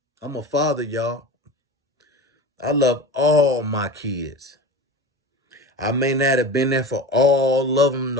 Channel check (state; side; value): normal; both; correlation 0.31